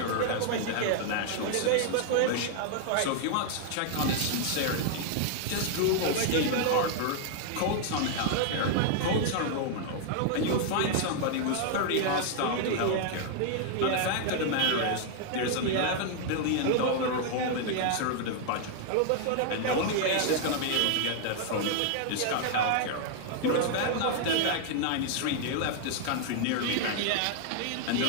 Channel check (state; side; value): different; both; correlation 0.00